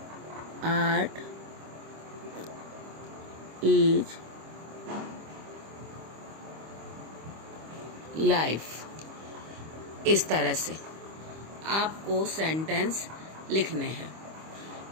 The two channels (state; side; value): late; left; 25 ms